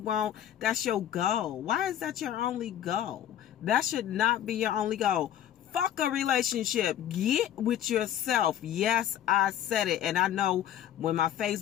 That's your goal. Why is that your only goal? That should not be your only goal. Fuck a relationship. Get with yourself. Yes, I said it. And I know when my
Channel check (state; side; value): quieter; right; 10.9 dB